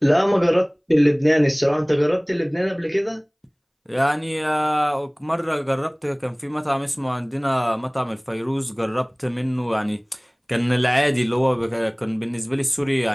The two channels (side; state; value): both; identical; correlation 1.00